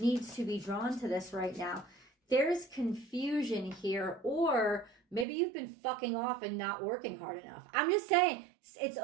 to be drawn to this right now. There's confusion here, or maybe you've been fucking off and not working hard enough. I'm just saying, it's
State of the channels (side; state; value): left; drops out; at 5.2 s